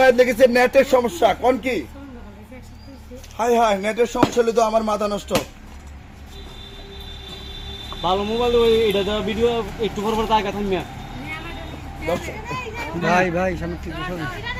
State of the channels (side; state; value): both; identical; correlation 1.00